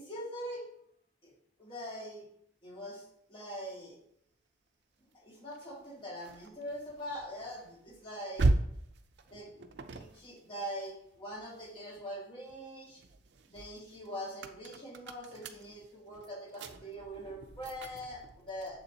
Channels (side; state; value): both; normal; correlation 0.65